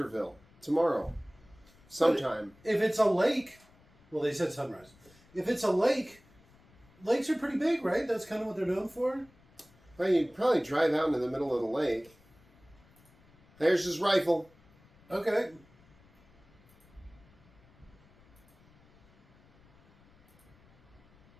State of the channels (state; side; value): noise; left; rumble, 29 dB below the sound